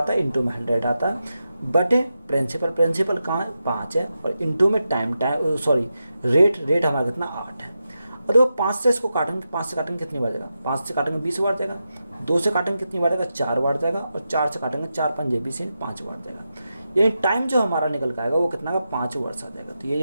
है, इंटू में 100 आता है, बटे प्रिंसिपल, प्रिंसिपल कहाँ 5 है, और इंटू में टाइम रेट हमारा कितना 8 है। और देखो 5 से इसको काटेंगे, 5 से काटेंगे कितनी बार जाएगा, 5 से काटेंगे 20 बार जाएगा, 2 से काटेंगे कितनी बार जाएगा 4 बार जाएगा, और 4 से काटेंगे 4 5 20 5 बार जाएगा। यानी टाइम जो हमारा निकल के आएगा वो कितना का 5 वर्ष आ जाएगा। तो यही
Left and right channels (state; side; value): inverted; both; correlation -0.89